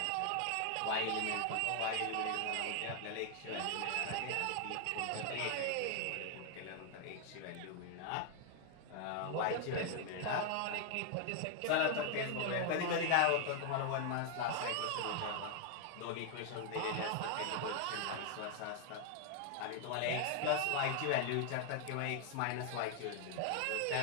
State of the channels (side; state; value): both; different; correlation 0.00